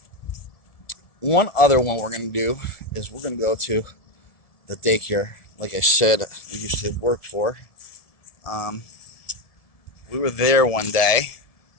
One other one we're going to do is we're going to go to the daycare, like I said, we used to work for. We were there one day,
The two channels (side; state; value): right; late; 1.7 ms